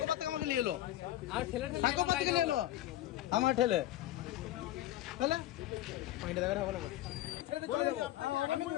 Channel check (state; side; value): quieter; right; 14.4 dB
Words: কত আমাকে নিয়ে এলো আর ঠেলে সাকো কত নিয়ে এলো আমার ঠেলে ঠেলে পয়েন্টে দেখা হবে না আমি